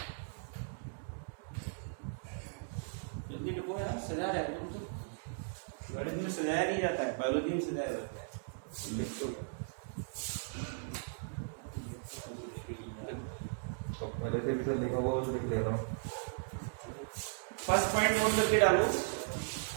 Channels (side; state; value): left; silent; digital silence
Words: जल्दी लिखो यार, सजा रहा है तुम तो। गणित में सजाया नहीं जाता है, बायोलॉजी में सजाया जाता है। लिखो पहले से भी सर लिखा हुआ लिख ले रहा हूँ। फर्स्ट पॉइंट नोट करके डालो।